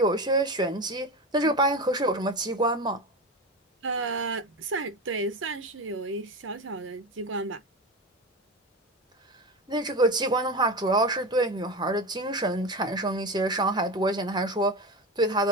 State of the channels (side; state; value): both; normal; correlation 0.22